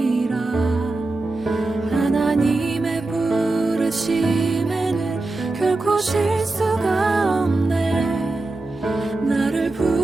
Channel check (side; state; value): left; quieter; 3.1 dB